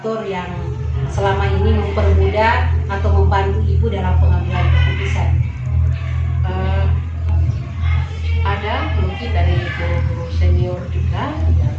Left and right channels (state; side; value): identical; both; correlation 1.00